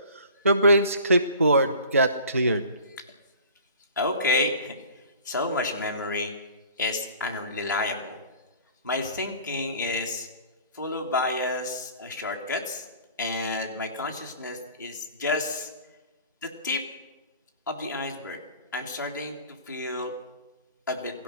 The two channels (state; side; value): inverted; both; correlation -0.46